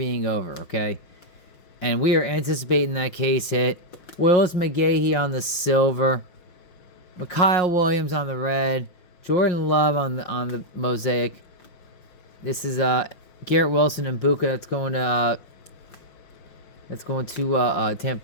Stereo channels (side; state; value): right; late; 5.7 ms